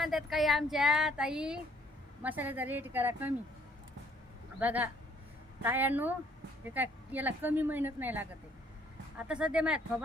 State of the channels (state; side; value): normal; both; correlation 0.63